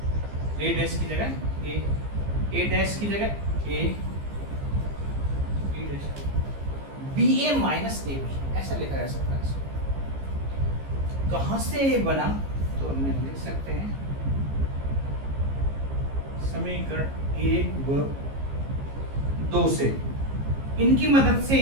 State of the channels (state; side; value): late; left; 15 ms